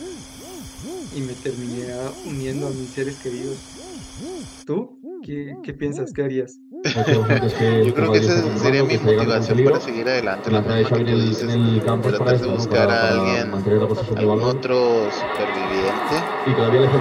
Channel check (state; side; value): identical; both; correlation 1.00